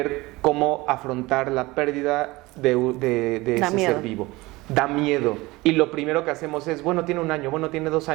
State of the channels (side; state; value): left; quieter; 21.1 dB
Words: cómo afrontar la pérdida de ese ser vivo. Da miedo. Y lo primero que hacemos es, bueno, tiene 1 año, bueno, tiene 2